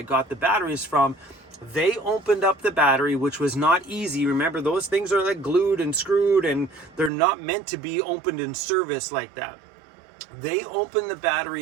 got the batteries from, they opened up the battery, which was not easy. Remember, those things are like glued and screwed, and they're not meant to be opened in service like that. They opened the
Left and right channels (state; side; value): drops out; left; at 7.1 s